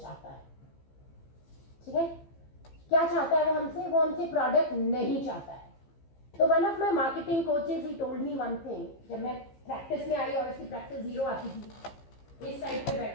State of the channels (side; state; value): right; late; 15 ms